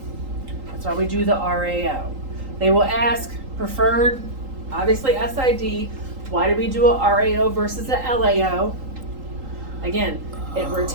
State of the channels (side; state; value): left; late; 3.8 ms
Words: That's why we do the RAO. They will ask preferred, obviously SID. Why do we do a RAO versus a LAO? Again, it